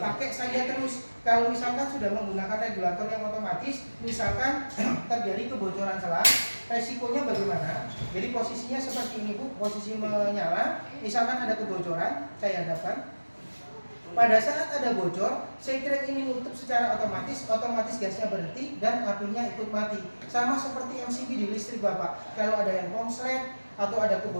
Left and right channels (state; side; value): inverted; both; correlation -1.00